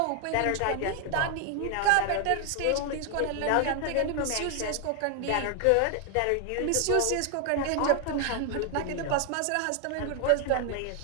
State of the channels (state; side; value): different; both; correlation 0.00